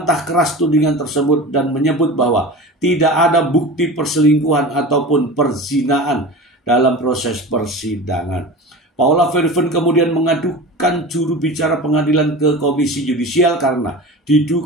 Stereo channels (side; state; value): both; normal; correlation 0.33